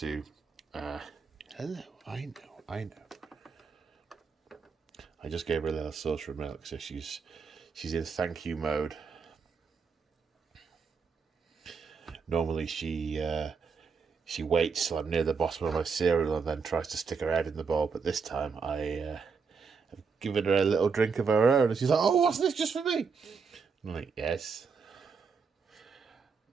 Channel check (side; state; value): left; quieter; 5.5 dB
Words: Hello, I know. I just gave her a little saucer of milk, so she's in thank you mode. Normally she waits till I'm near the bottom of my cereal and then tries to stick her head in the bowl, but this time I have given her a little drink of her own, and she's like, "Oh, what's this, just for me?" I'm like, yes.